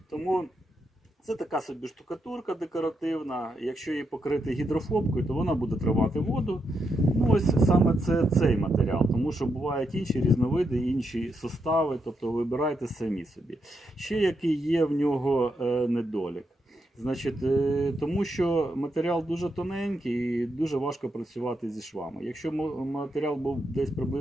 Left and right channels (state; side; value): normal; both; correlation 0.82